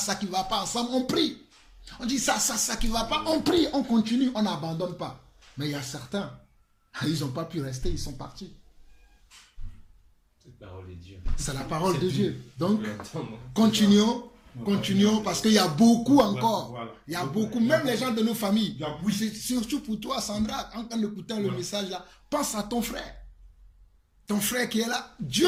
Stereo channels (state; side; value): identical; both; correlation 1.00